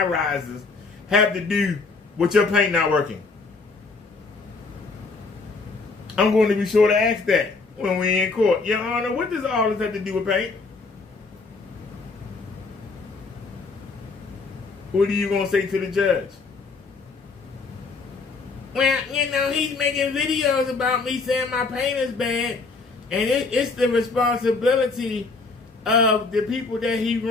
rises have to do with your paint not working? I'm going to be sure to ask that when we're in court. Your Honor, what does all this have to do with paint? What are you going to say to the judge? Well, you know, he's making videos about me saying my paint is bad, and it's the responsibility of the people that he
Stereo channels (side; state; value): right; quieter; 4.1 dB